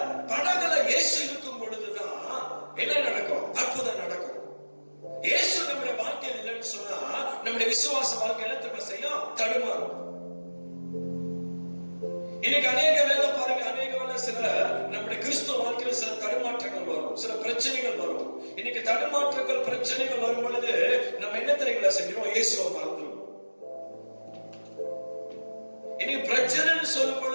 படகுல இயேசு இருக்கும் பொழுதுதான் என்ன நடக்கும்? அற்புதம் நடக்கும். இயேசு நம்முடைய வாழ்க்கையில் இல்லைன்னு சொன்னா நம்முடைய விசுவாச வாழ்க்கையில திரும்ப செய்யும், தடுமாறும். இன்னைக்கு அநேக வேலை பாருங்க, அநேக வேலை சில நம்முடைய கிறிஸ்துவ வாழ்க்கையில சில தடுமாற்றங்கள் வரும், சில பிரச்சனைகள் வரும். இன்னைக்கு தடுமாற்றங்கள் பிரச்சனைகள் வரும் பொழுது நம்ம என்ன தெரியுங்களா செஞ்சோம்? இயேசுவை மறந்துடும். இன்னைக்கு பிரச்சனைன்னு சொல்லும்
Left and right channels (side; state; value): both; inverted; correlation -1.00